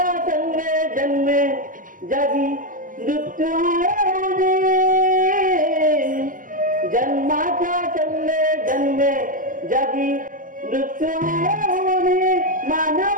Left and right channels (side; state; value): left; late; 0.39 ms